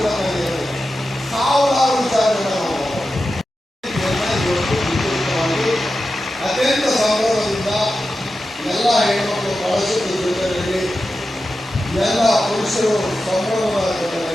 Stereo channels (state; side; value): normal; both; correlation 0.92